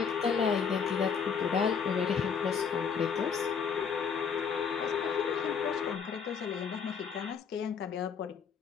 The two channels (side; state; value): right; quieter; 6.5 dB